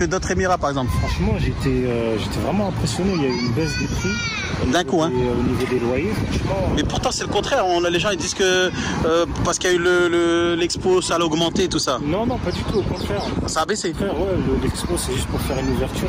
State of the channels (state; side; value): identical; both; correlation 1.00